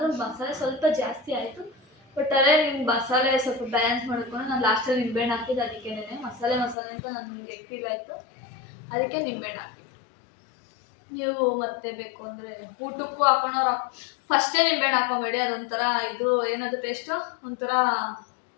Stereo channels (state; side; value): drops out; right; at 6.8 s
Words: ಮಸಾಲೆ ಸ್ವಲ್ಪ ಜಾಸ್ತಿ ಆಯಿತು. ಬಟ್ ಅದೇ ನಿಮ್ಗೆ ಮಸಾಲೆ ಸ್ವಲ್ಪ ಬ್ಯಾಲೆನ್ಸ್ ಮಾಡ್ಕೊಂಡು ನಾನು ಲಾಸ್ಟಲ್ಲಿ ನಿಂಬೆಹಣ್ಣು ಹಾಕಿದ್ದು. ಅದಕ್ಕೇನೆ ಮಸಾಲೆ ಅಂತ ನನಗೆ ಫೀಲ್ ಆಯಿತು, ಅದಕ್ಕೆ ನಿಂಬೆಹಣ್ಣು ಹಾಕಿದ್ದು. ನೀವು ಮತ್ತೆ ಬೇಕು ಅಂದರೆ ಊಟಕ್ಕೂ